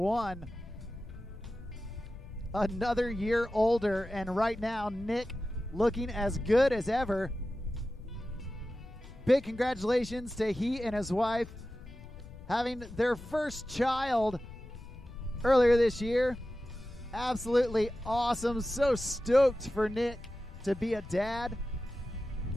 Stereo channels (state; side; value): noise; left; rumble, 16 dB below the sound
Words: Another year older, and right now Nick looking as good as ever. Big congratulations to he and his wife having their first child earlier this year. Absolutely awesome. So stoked for Nick to be a dad.